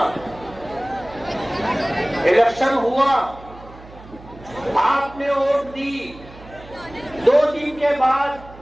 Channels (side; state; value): right; noise; hum, 19 dB below the sound